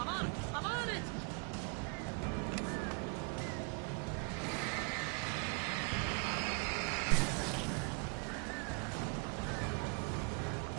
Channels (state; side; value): quieter; left; 33.4 dB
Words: on it! I'm on it!